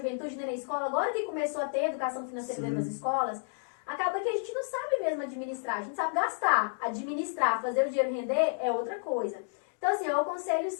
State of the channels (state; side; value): silent; right; digital silence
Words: nem na escola, agora que começou a ter educação financeira dentro das escolas, acaba que a gente não sabe mesmo administrar, a gente sabe gastar, administrar, fazer o dinheiro render é outra coisa. Então, assim, eu aconselho